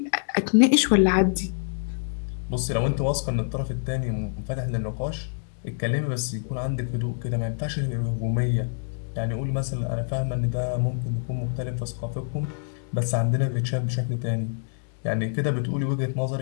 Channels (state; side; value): silent; right; digital silence